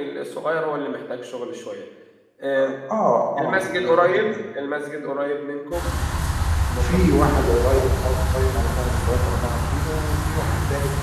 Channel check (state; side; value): identical; both; correlation 1.00